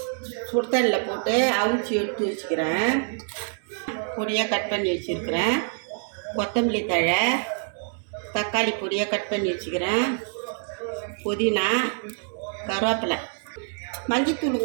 சுடுதண்ணில் போட்டு அவிச்சி எடுத்து வச்சுக்கிறேன். பொடியாக கட் பண்ணி வச்சுருக்கிறேன். கொத்தமல்லி தழை, தக்காளி பொடியாக கட் பண்ணி வச்சுக்கிறேன். புதினா, கருவேப்பிலை,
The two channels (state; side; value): silent; left; 61 dB below the other